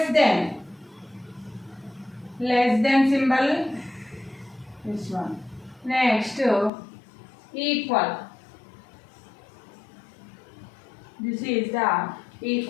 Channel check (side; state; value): right; drops out; at 6.7 s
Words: than. Less than symbol, this one. Next, equal. This is the